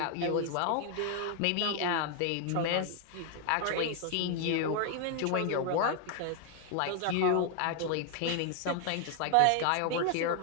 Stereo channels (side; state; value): both; different; correlation 0.00